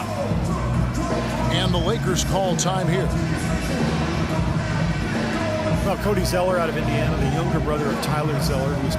it. And the Lakers call time here. Well, Cody Zeller out of Indiana, the younger brother of Tyler Zeller, who was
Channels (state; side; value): identical; both; correlation 1.00